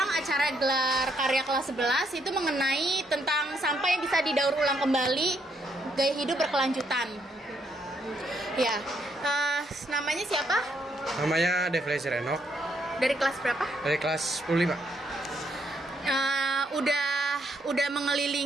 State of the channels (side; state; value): both; normal; correlation 0.74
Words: acara gelar karya kelas 11 itu mengenai tentang sampah yang bisa didaur ulang kembali, gaya hidup berkelanjutan. Ya, namanya siapa? Namanya Devlezer Enok. Dari kelas berapa? Dari kelas 10, Pak. Udah